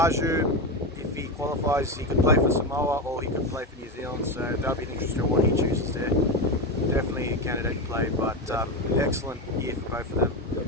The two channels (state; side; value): normal; both; correlation 0.16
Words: if he qualifies, he could play for Samoa or he could play for New Zealand, so that'll be an interesting one he chooses there. Definitely a candidate to play, but excellent year for both of them.